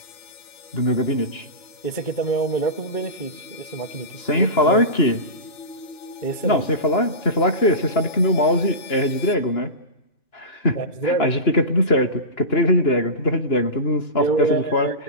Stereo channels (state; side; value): late; right; 2.9 ms